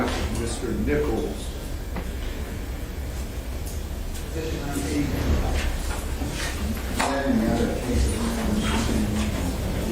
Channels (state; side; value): identical; both; correlation 1.00